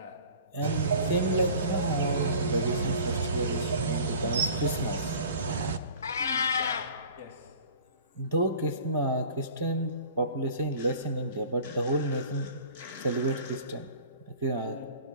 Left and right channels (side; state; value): both; inverted; correlation -0.45